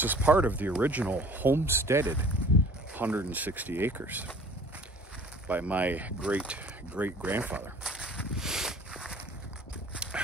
is part of the original homesteaded 160 acres by my great-great-grandfather.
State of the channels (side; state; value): both; normal; correlation 0.49